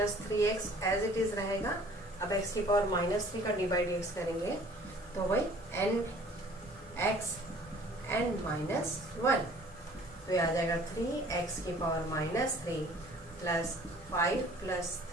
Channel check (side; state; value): both; normal; correlation 0.52